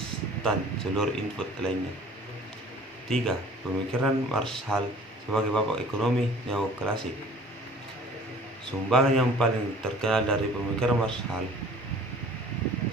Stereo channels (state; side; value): normal; both; correlation 0.49